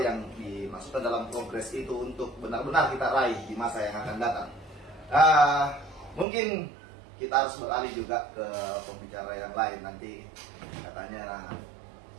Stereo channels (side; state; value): left; drops out; at 6.2 s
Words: yang dimaksudkan dalam progres itu untuk benar-benar kita raih di masa yang akan datang. Mungkin kita harus beralih juga ke pembicara yang lain. Nanti katanya